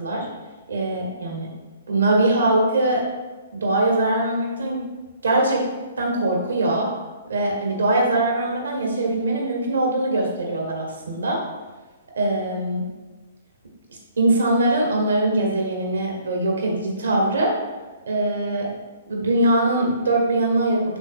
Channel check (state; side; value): inverted; both; correlation -0.62